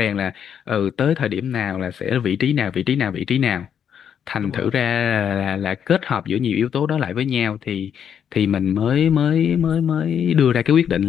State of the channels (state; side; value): quieter; right; 8.4 dB